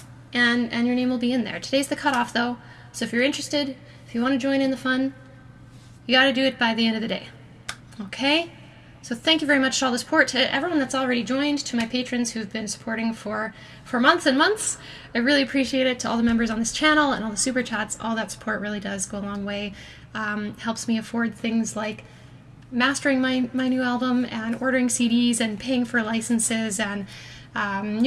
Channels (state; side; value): identical; both; correlation 1.00